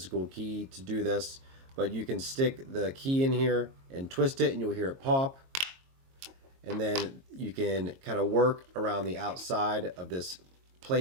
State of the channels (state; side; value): late; left; 22 ms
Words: key to do this, but you can stick the key in here and twist it and you'll hear it pop. And then you can kind of work around the outside of this